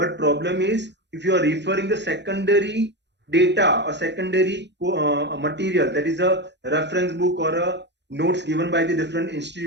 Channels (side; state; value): left; late; 0.51 ms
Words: problem is, if you are referring the secondary data or secondary material, that is a reference book or a notes given by the different